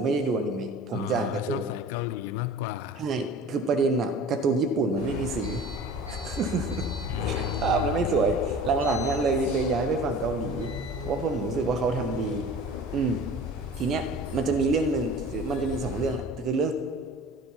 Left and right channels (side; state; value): both; normal; correlation 0.42